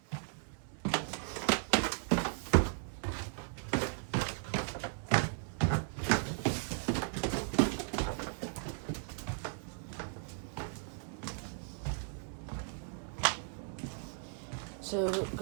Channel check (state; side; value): silent; left; 53 dB below the other